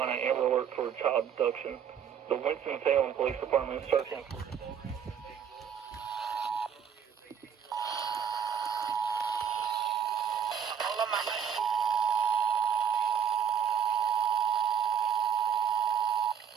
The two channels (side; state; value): left; quieter; 8.1 dB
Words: Amber Alert for child abduction. The Winston-Salem Police Department is searching for